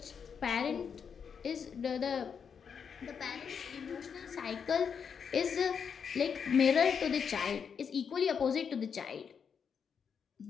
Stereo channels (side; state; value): right; quieter; 6.8 dB